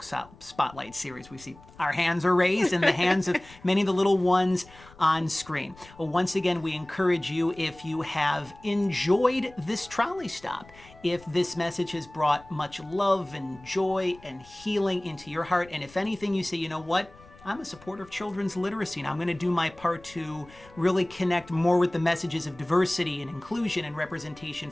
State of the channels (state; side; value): noise; left; rumble, 23 dB below the sound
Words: Spotlight series. We see our hands are raised and the hands of many of the little ones on screen. Well, once again, we encourage you, if you have enjoyed this trolley stop, if this message has brought much love and joy and healing into your heart, and if anything, you say, you know what? I'm a supporter of children's literacy, and I'm going to do my part to really connect more with the messages of diversity and inclusion and representation